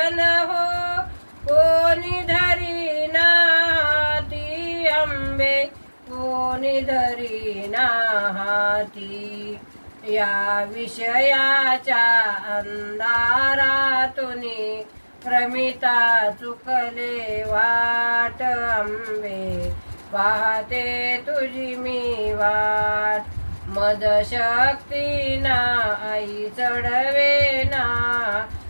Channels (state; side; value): inverted; both; correlation -1.00